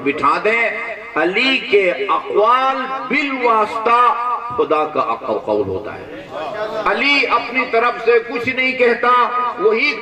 بٹھا دیں۔ علی کے اقوال بالواسطہ خدا کا قول ہوتا ہے۔ علی اپنی طرف سے کچھ نہیں کہتا، وہی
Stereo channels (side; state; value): both; identical; correlation 1.00